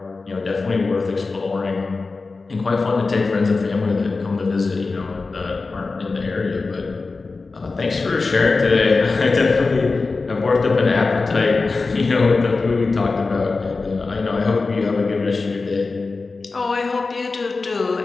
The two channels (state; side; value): quieter; right; 3.9 dB